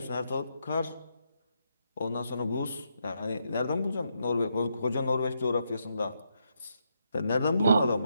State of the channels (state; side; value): inverted; both; correlation -0.80